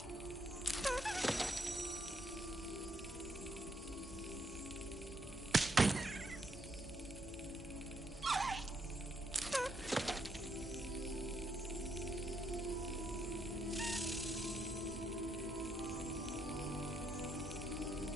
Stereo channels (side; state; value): both; normal; correlation 0.75